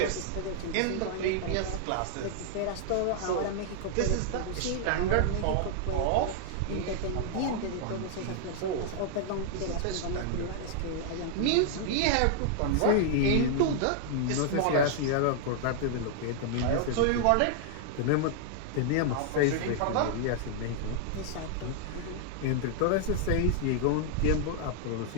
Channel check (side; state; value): both; different; correlation -0.01